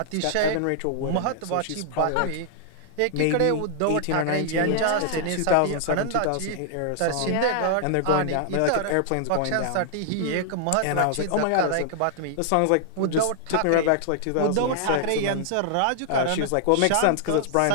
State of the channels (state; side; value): different; both; correlation 0.00